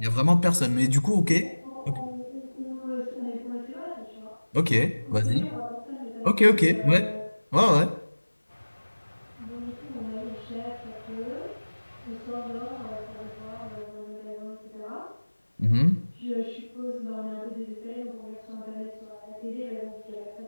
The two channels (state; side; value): inverted; both; correlation -1.00